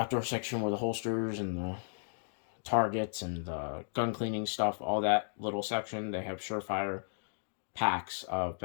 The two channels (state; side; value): silent; right; digital silence